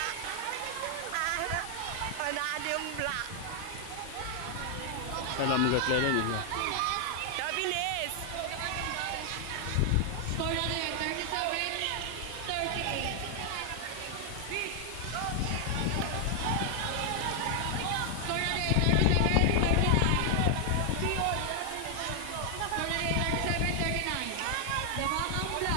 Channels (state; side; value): different; both; correlation 0.00